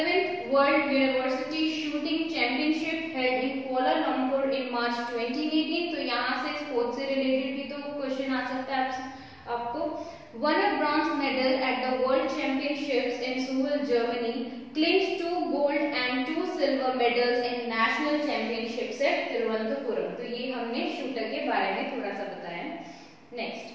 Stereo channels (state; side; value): identical; both; correlation 1.00